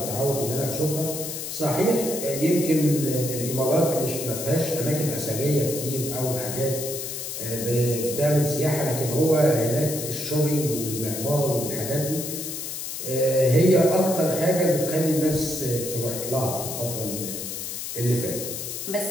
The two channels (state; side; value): noise; left; hiss, 6 dB below the sound